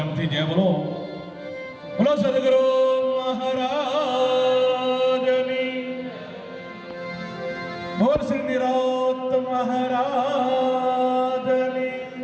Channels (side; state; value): both; identical; correlation 1.00